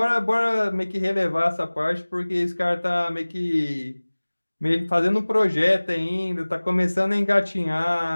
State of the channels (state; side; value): inverted; both; correlation -1.00